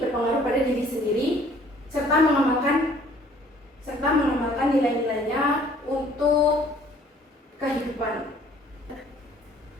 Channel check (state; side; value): normal; both; correlation 0.57